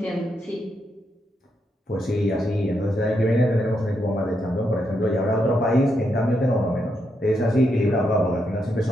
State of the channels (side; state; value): both; normal; correlation 0.81